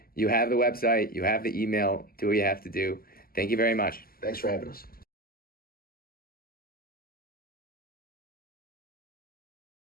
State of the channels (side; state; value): right; late; 0.42 ms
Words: You have the website. You have the email. Do what you have to do. Thank you very much. Thanks for having us.